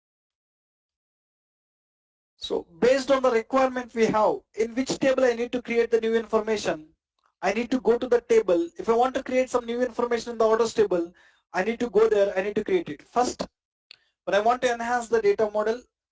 So based on the requirement we have, in which table I need to create the new information, I need to go to the table. If I want to create some new information in the orders table, I need to go there, I need to create it. First, when I want to enhance the data model,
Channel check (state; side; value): identical; both; correlation 1.00